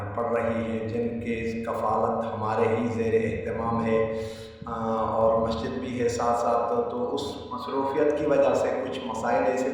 پڑھ رہی ہیں، جن کی کفالت ہمارے ہی زیر اہتمام ہے، اور مسجد بھی ہے ساتھ ساتھ۔ تو اس مصروفیت کی وجہ سے کچھ مسائل ایسے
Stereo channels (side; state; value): both; identical; correlation 1.00